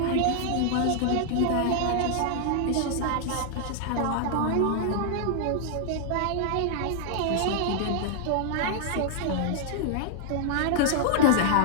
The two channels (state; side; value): different; both; correlation 0.00